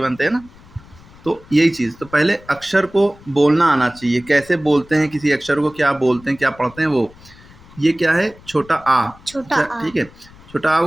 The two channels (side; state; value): left; noise; rumble, 23 dB below the sound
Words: हैं ना। तो यही चीज़, तो पहले अक्षर को बोलना आना चाहिए, कैसे बोलते हैं किसी अक्षर को, क्या बोलते हैं, क्या पढ़ते हैं वो। ये क्या है, छोटा आ, छोटा अच्छा आ। ठीक है। छोटा आ